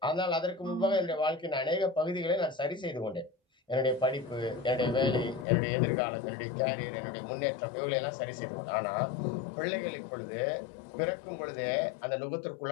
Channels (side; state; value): right; drops out; at 5.5 s